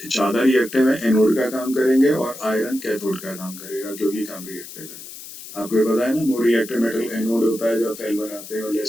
ज्यादा रिएक्टिव है, एनोड का काम करेंगे, और आयरन कैथोड का काम करेगा क्योंकि कम रिएक्टिव है। आपको ये पता है ना, मोर रिएक्टिव मेटल एनोड होता है जब सेल बनाते हैं और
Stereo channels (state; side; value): noise; left; hiss, 14 dB below the sound